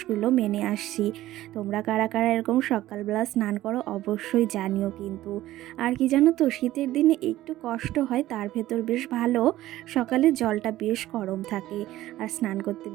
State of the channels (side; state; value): left; quieter; 15.1 dB